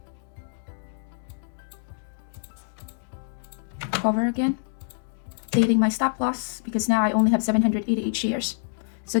Cover again, updating my stop loss because now I only have 788 shares. So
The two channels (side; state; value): right; silent; digital silence